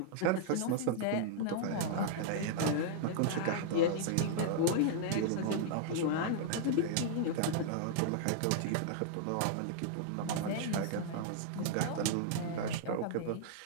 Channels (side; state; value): both; different; correlation -0.01